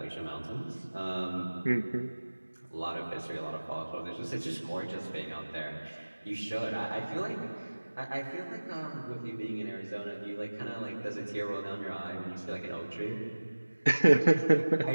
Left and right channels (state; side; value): inverted; both; correlation -1.00